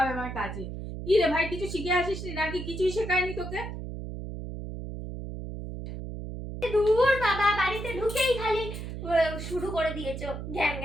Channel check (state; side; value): noise; right; hum, 8 dB below the sound